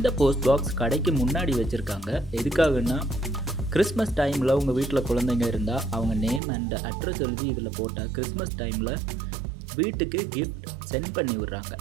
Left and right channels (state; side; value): drops out; left; at 6.4 s